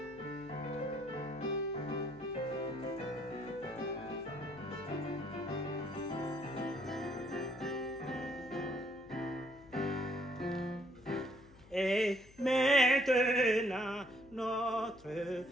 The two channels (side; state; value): left; noise; hum, 23 dB below the sound